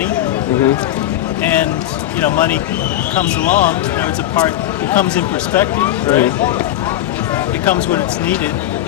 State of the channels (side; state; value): right; quieter; 13.4 dB